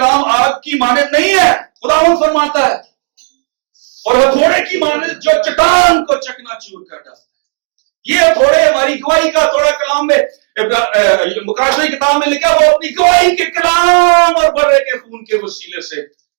آگ کی مانند نہیں ہے خداوند فرماتا ہے اور ہتھوڑے کی مانند جو چٹان کو چکنا چور کر ڈالتا ہے یہ تھوڑے ہماری گواہی کا تھوڑا کلام میں مقاشی کتاب میں لکھا وہ اپنی گواہی کے کلام اور برے کے خون کے وسیلے سے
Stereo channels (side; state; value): left; silent; 57 dB below the other